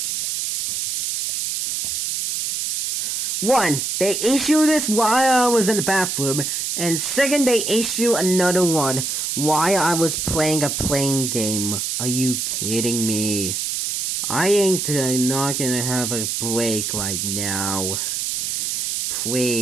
One, they issued this while I was in the bathroom, and second, they issue another one while I was playing a playing game. Are you kidding me? I ain't not gonna have a break right now.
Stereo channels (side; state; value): right; noise; hiss, 1 dB below the sound